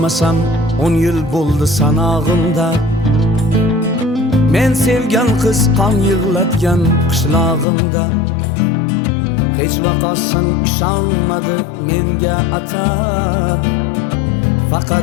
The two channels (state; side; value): drops out; right; at 7.7 s